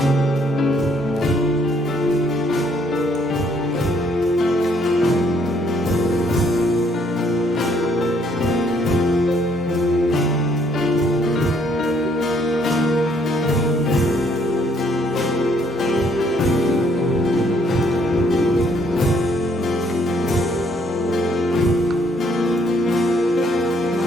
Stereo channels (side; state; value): both; normal; correlation 0.67